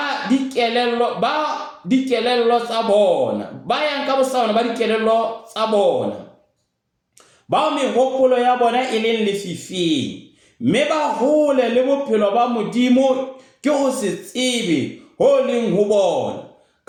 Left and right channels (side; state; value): both; identical; correlation 1.00